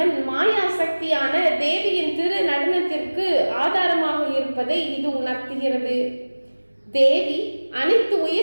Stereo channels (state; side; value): inverted; both; correlation -1.00